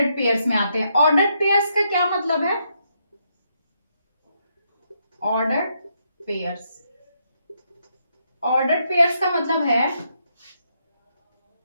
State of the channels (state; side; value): inverted; both; correlation -0.77